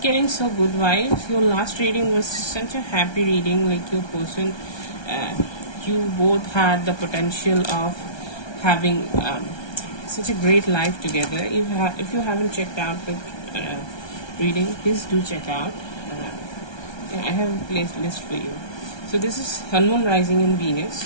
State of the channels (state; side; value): late; right; 1.3 ms